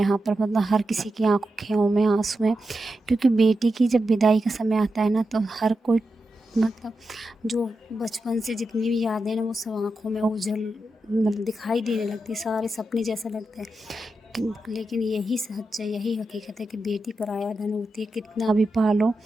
पर, मतलब हर किसी की आँखों में आँसू हैं, क्योंकि बेटी की जब विदाई का समय आता है ना तो हर कोई, मतलब जो बचपन से जितनी भी यादें हैं ना वो सब आँखों में ओझल मतलब दिखाई देने लगती है, सारे सपने जैसा लगता है। लेकिन यही सच है, यही हकीकत है कि बेटी पराया धन होती है। कितना भी पालो,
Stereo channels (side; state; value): both; normal; correlation 0.89